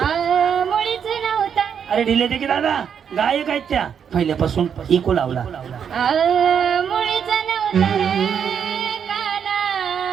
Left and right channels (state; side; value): quieter; left; 7.7 dB